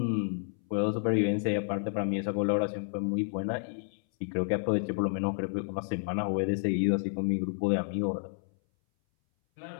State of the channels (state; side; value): silent; right; 57 dB below the other